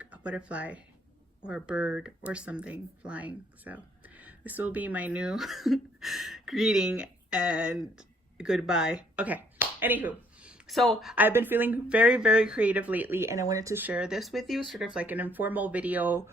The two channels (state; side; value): normal; both; correlation 0.65